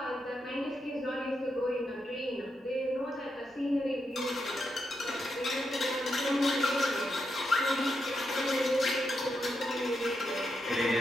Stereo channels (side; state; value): both; normal; correlation 0.84